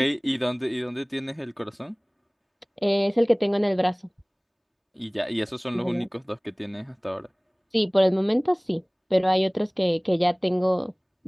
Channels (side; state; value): both; identical; correlation 1.00